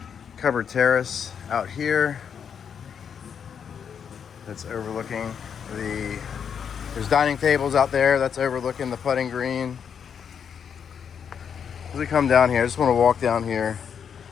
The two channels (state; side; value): quieter; right; 7.5 dB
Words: covered terrace out here that's overlooking there's dining tables out there that's overlooking the putting green. As we come down here, I just want to walk down here